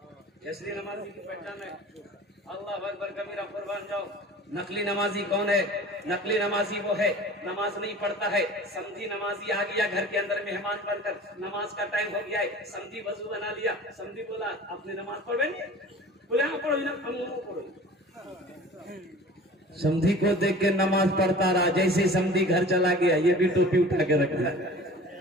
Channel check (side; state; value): both; normal; correlation 0.42